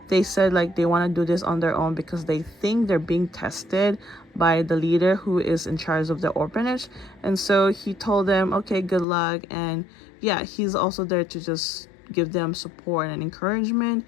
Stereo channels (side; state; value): right; drops out; at 9.1 s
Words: they said like they want to do this on their own because they think they're being tested by the leader who is in charge of the orphanage. And so he told them, okay, good luck. And yeah, he's also there to just give them support and encouragement.